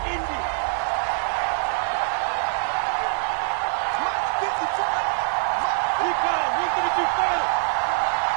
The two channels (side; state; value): left; silent; digital silence